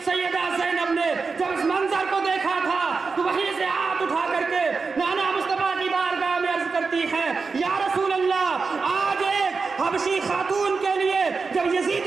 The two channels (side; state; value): left; quieter; 4.6 dB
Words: सैयदा ज़ैनब ने जब इस मंजर को देखा था तो वहीं से हाथ उठा करके नाना मुस्तफा की बारगाह में अर्ज करती है, या रसूल अल्लाह, आज एक हबशी खातून के लिए जब